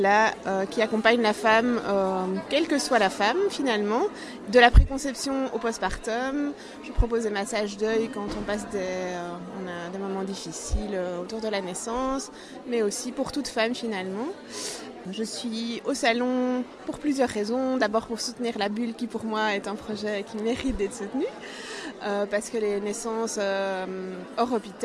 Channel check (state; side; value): identical; both; correlation 1.00